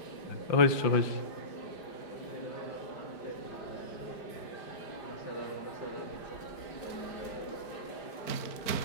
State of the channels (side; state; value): right; late; 5.1 ms